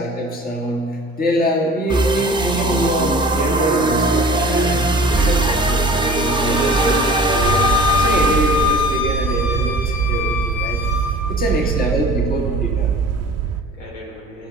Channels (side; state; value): both; normal; correlation 0.43